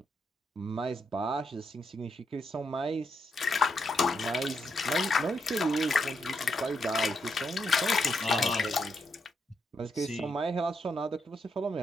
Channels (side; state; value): both; normal; correlation 0.80